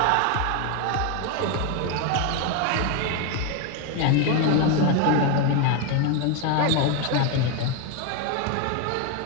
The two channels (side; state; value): both; different; correlation 0.02